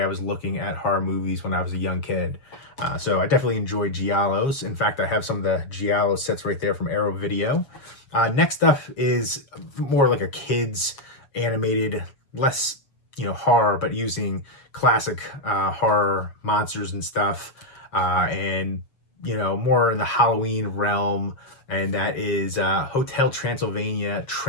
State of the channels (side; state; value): right; late; 7.2 ms